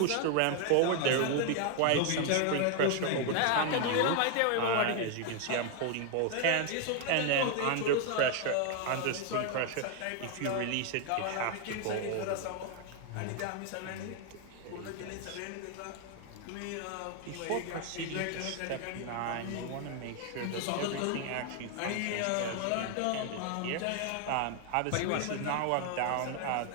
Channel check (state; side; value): different; both; correlation 0.01